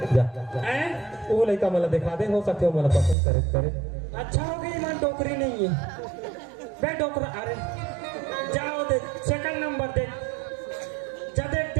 जा हैं वो लड़का मला दिखा दे हो सकते हो मला पसंद करे अच्छा हो गई मन डोकरी नहीं है बे डोकरा अरे जाओ दे सेकंड नंबर दे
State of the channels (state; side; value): drops out; left; at 3.2 s